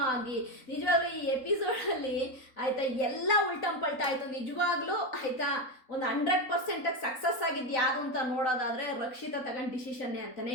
ಆಗಿ ನಿಜವಾಗ್ಲೂ ಈ ಎಪಿಸೋಡಲ್ಲಿ ಆಯಿತಾ ಎಲ್ಲ ಉಲ್ಟಂಪಲ್ಟ ಆಯಿತು. ನಿಜವಾಗ್ಲೂ ಆಯಿತಾ ಒಂದು 100% ಸಕ್ಸಸ್ ಆಗಿದ್ದು ಯಾವುದು ಅಂತ ನೋಡೋದಾದರೆ ರಕ್ಷಿತಾ ತಗೊಂಡು ಡಿಸಿಷನ್ನೇ ಅಂತಲೇ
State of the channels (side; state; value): right; late; 3.9 ms